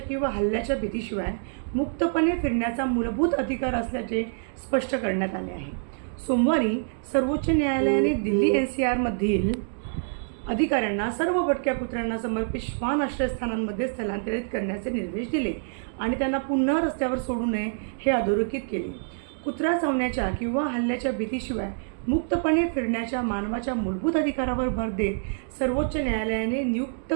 किंवा हल्ल्याच्या भीतीशिवाय मुक्तपणे फिरण्याचा मूलभूत अधिकार असल्याचे स्पष्ट करण्यात आले आहे. सोमवारी सर्वोच्च न्यायालयाने दिल्ली NCR मधील अधिकाऱ्यांना सर्व भटक्या कुत्र्यांना समर्पित श्वान आश्रयस्थानांमध्ये स्थलांतरित करण्याचे निर्देश दिले आणि त्यांना पुन्हा रस्त्यावर सोडू नये हे अधोरेखित केले. कुत्रा चावण्याच्या किंवा हल्ल्याच्या भीतीशिवाय मुक्तपणे फिरण्याच्या मानवाच्या मूलभूत अधिकारावर भर देत सर्वोच्च न्यायालयाने नियुक्त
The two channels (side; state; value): left; silent; digital silence